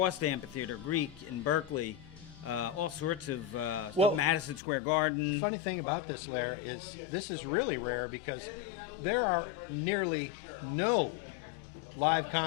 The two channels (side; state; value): right; drops out; at 4.6 s